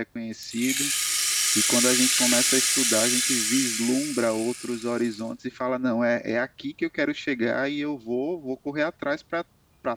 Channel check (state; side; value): identical; both; correlation 1.00